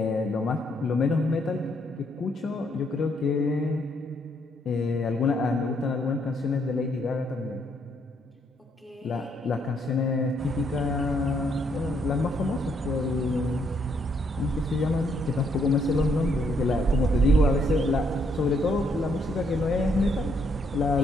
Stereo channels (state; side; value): normal; both; correlation 0.72